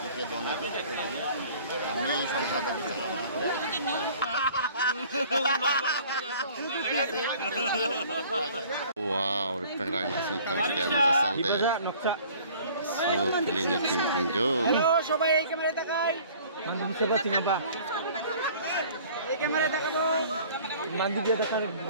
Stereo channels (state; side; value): inverted; both; correlation -0.51